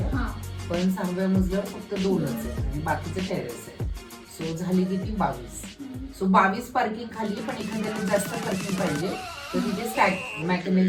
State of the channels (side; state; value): both; identical; correlation 1.00